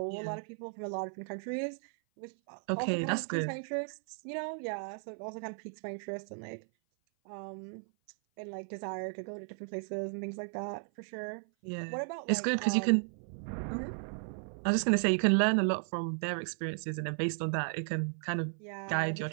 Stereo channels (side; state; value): left; silent; 54 dB below the other